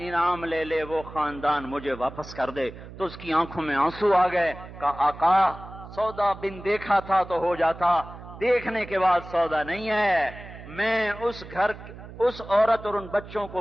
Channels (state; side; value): noise; right; hum, 15 dB below the sound